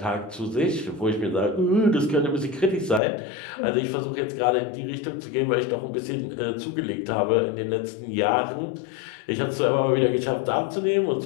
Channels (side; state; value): right; drops out; at 3.0 s